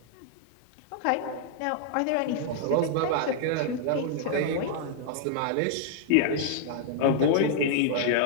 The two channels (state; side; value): different; both; correlation 0.00